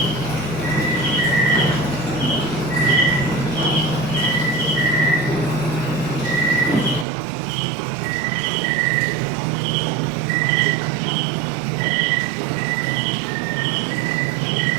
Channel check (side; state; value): left; drops out; at 7.1 s